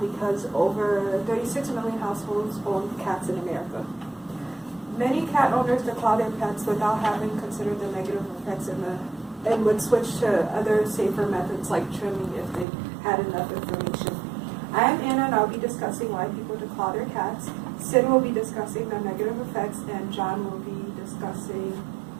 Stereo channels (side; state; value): left; drops out; at 12.7 s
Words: because over 36 million households own cats in America. Many cat owners declaw their pets without having considered the negative effects and would switch to other safer methods like trimming if they had enough information. I am Anna and I'll be discussing why people declaw their cats. Sid will be discussing the negative effects and John will be discussing